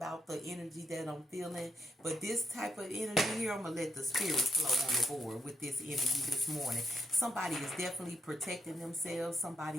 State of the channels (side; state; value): both; normal; correlation 0.78